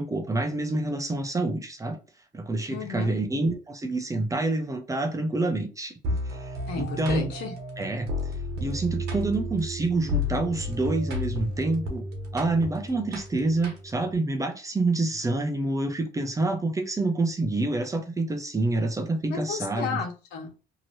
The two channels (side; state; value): both; normal; correlation 0.71